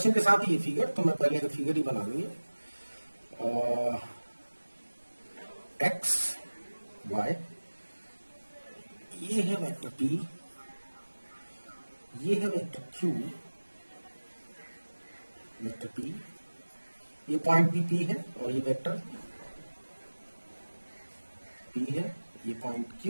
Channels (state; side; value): inverted; both; correlation -1.00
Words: के साथ ही ये फिगर, तो मैं पहले फिगर ही बना लूंगी। एक्स वाई, ये है वेक्टर p, ये है वेक्टर q, वेक्टर p, ये पॉइंट p है और ये वेक्टर p है, ये पॉइंट